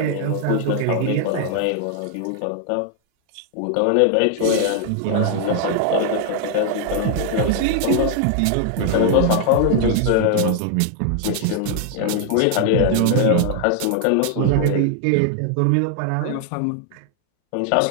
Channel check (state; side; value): different; both; correlation 0.00